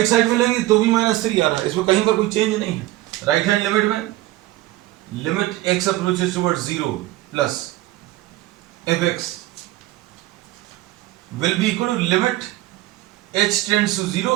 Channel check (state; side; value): quieter; left; 16.8 dB